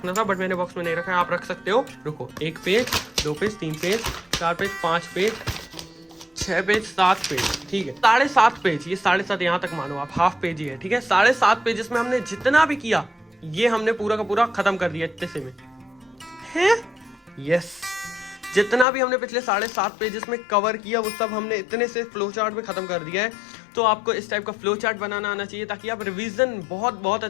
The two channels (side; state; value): right; drops out; at 18.9 s